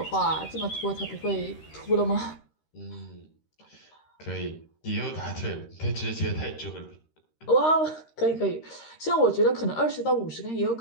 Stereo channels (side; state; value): right; late; 13 ms